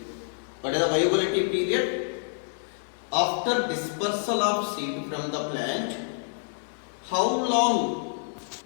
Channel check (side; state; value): right; silent; digital silence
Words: What is the viability period? After dispersal of seed from the plant, how long